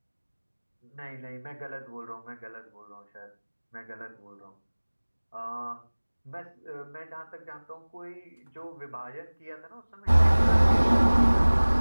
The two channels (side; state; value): both; inverted; correlation -1.00